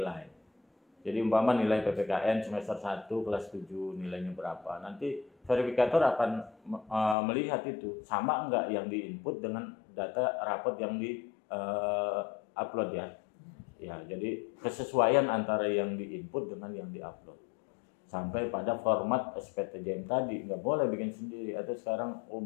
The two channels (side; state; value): right; drops out; at 7.2 s